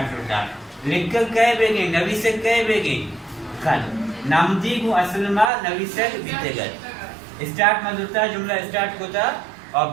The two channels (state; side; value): drops out; left; at 5.5 s